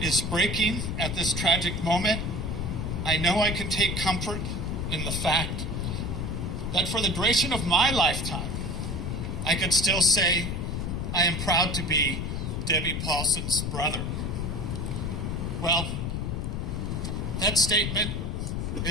breaking at this tragic moment, I know I can take comfort in the fact that for the duration of my lifetime, I could still say I am proud to be Debbie Paulsen's brother. Well, that statement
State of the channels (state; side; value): noise; left; rumble, 2 dB below the sound